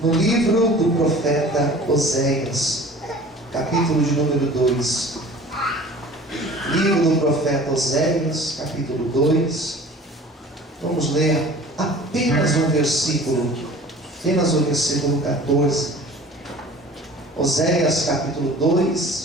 livro do profeta Oséias, capítulo de número 2. Livro do profeta Oséias, capítulo 2. Vamos ler apenas o versículo 14. Oséias, capítulo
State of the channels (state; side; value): normal; both; correlation 0.45